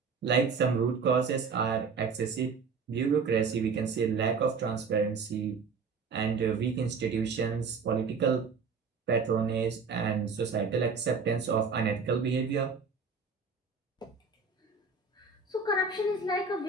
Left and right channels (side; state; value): left; quieter; 5.0 dB